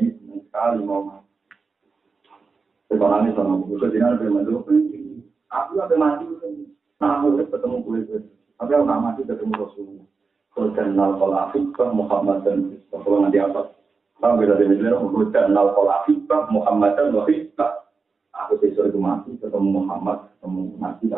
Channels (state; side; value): quieter; left; 4.6 dB